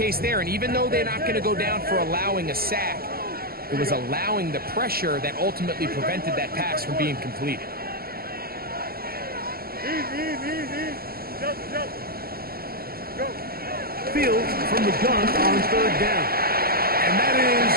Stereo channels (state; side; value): late; left; 0.44 ms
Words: there. And even though they're not going to go down for allowing a sack, it was allowing the pressure that ultimately prevented that pass from being completed. Easy. Jump. Go. Field from the gun on 3rd down. And that